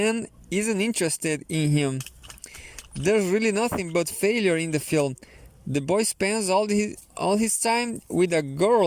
in him. There's really nothing but failure in the film. The boy spends all his time with a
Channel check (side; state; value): both; identical; correlation 1.00